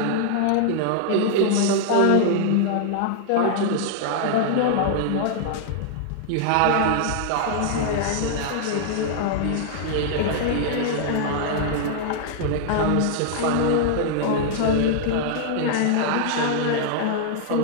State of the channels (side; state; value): both; different; correlation 0.00